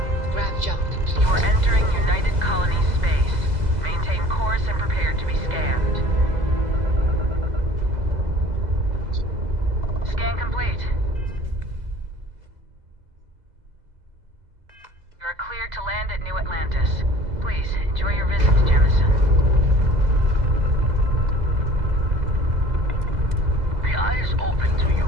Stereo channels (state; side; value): late; left; 2.0 ms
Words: Grav jump complete. You are entering United Colony space. Maintain course and prepare to be scanned. Scan complete. You are cleared to land at New Atlantis. Please, enjoy your visit to Jemison. The eye is open to you,